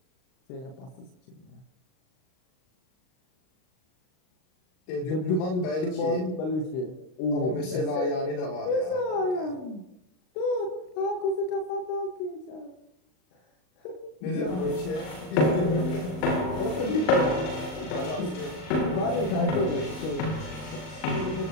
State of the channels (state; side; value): late; right; 39 ms